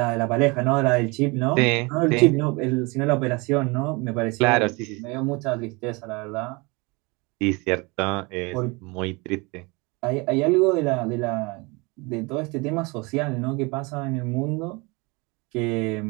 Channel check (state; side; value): quieter; left; 27.1 dB